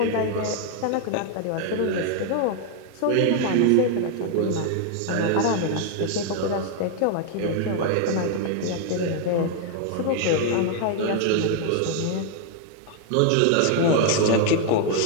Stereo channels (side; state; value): both; different; correlation 0.00